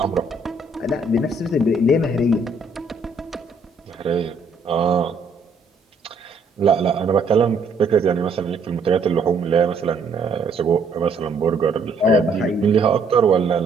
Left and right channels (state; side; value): quieter; left; 3.6 dB